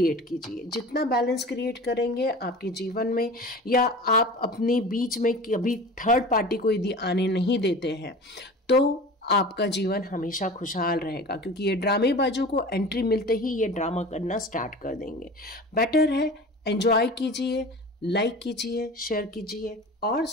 कीजिए। जितना बैलेंस क्रिएट करेंगे आपके जीवन में, या आप अपने बीच में कभी थर्ड पार्टी को यदि आने नहीं देते हैं, तो आपका जीवन हमेशा खुशहाल रहेगा, क्योंकि ये ड्रामेबाजों को एंट्री मिलते ही ये ड्रामा करना स्टार्ट कर देंगे। बेटर है एंजॉय कीजिए, लाइक कीजिए, शेयर कीजिए और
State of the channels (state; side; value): normal; both; correlation 0.37